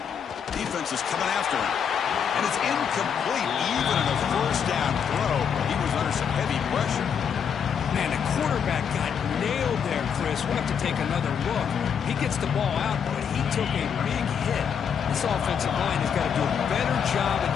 Defense is coming after him. And it's incomplete. Even in a 1st down throw, he was under some heavy pressure. Man, the quarterback got nailed there, Chris. We'll have to take another look. He gets the ball out, but he took a big hit. This offensive line has got to do a better job of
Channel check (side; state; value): right; quieter; 7.4 dB